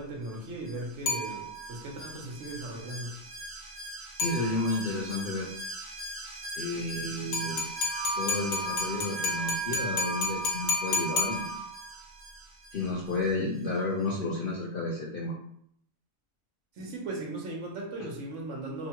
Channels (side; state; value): both; normal; correlation 0.03